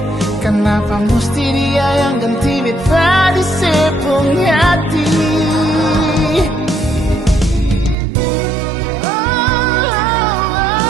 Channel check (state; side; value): drops out; left; at 8.0 s